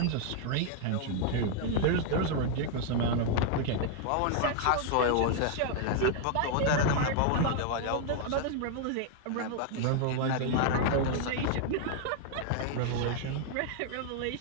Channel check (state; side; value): different; both; correlation 0.00